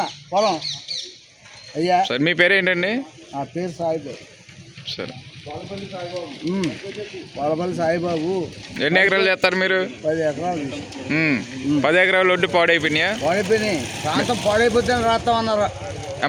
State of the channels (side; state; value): both; identical; correlation 1.00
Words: పొలం అయ్యా సరే మీ పేరు ఏంటండి? నా పేరు సాయిబాబు సరే వాళ్ళపల్లి సాయిబాబు ఎన్ని ఎకరాలు చేస్తారు మీరు? 10 ఎకరాలు 10 ఎకరాలు ఒడ్డు పాడైపోయినాయా? పాడైపోయినాయి ప్రాంతం పాడైపోతే రాస్తామన్నారు